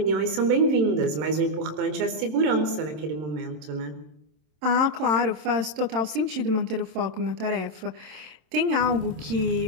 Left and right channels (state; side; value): late; left; 26 ms